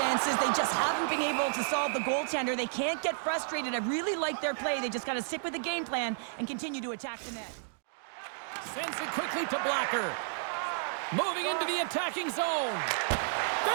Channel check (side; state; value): left; silent; digital silence